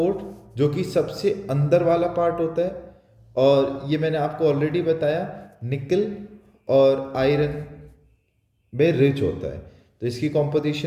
जो कि सबसे अंदर वाला पार्ट होता है। और ये मैंने आपको ऑलरेडी बताया, निकल और आयरन में रिच होता है। तो इसकी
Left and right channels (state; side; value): identical; both; correlation 1.00